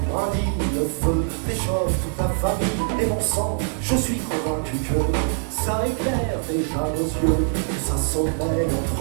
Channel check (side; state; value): left; silent; 58 dB below the other